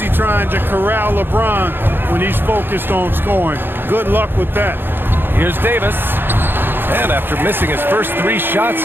trying to corral LeBron when he's focused on scoring. Good luck with that. Here's Davis. And after missing his first 3 shots,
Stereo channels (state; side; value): late; left; 0.10 ms